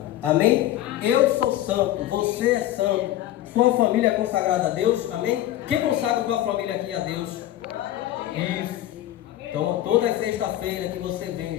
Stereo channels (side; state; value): right; quieter; 13.7 dB